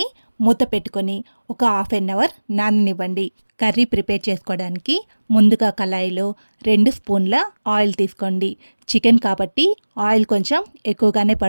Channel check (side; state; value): both; inverted; correlation -1.00